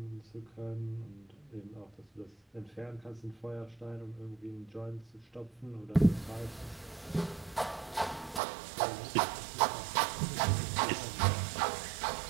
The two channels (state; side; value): drops out; left; at 8.4 s